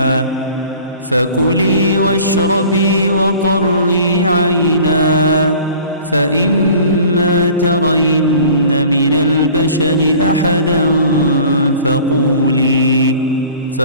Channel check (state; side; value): inverted; both; correlation -0.46